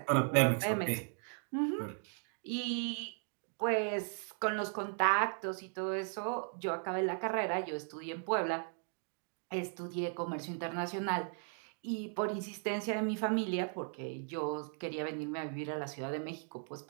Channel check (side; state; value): left; silent; 53 dB below the other